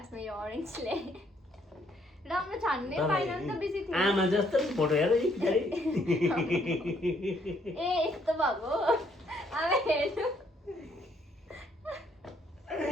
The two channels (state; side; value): normal; both; correlation 0.68